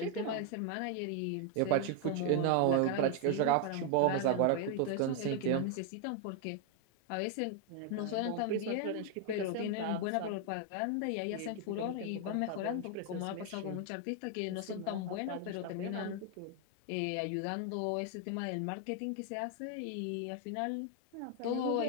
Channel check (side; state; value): both; different; correlation 0.00